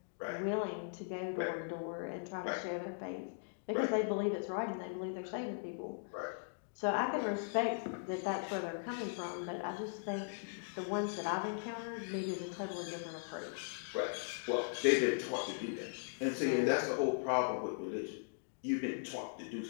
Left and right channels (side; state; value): right; silent; digital silence